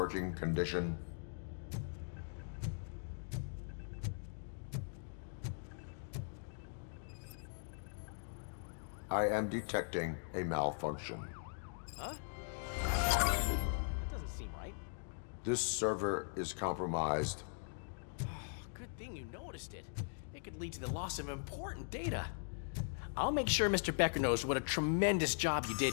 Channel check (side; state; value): right; silent; digital silence